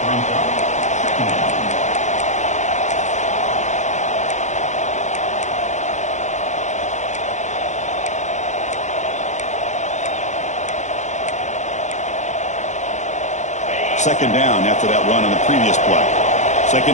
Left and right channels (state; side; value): late; right; 0.34 ms